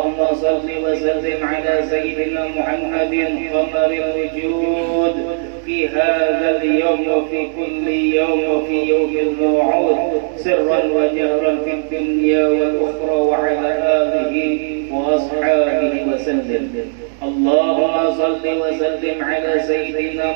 shalli wa sallim ala sayyidina Muhammadin qamaril wujud fi hadzal yawm wa fi kulli yawm wa fi yawmil maw'ud sirran wa jahran fid dunya wal ukhra wa ala alihi wa ashabihi wa sallam. Allahumma salli wa sallim ala sayyidina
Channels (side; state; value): left; silent; digital silence